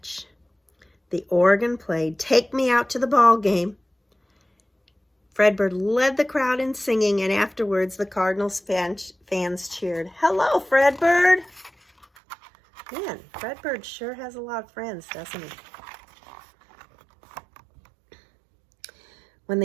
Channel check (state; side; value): drops out; left; at 12.1 s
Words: The organ played "Take Me Out to the Ball Game." Fredbird led the crowd in singing, and afterwards the Cardinals fans cheered, "Hello, Fredbird." Man, Fredbird sure has a lot of friends, doesn't he? With